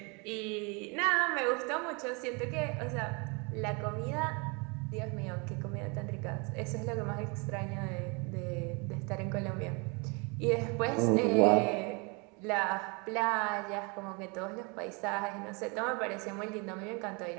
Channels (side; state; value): left; quieter; 30.9 dB